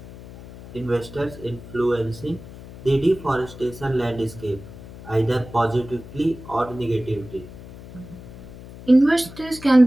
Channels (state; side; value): noise; left; hum, 16 dB below the sound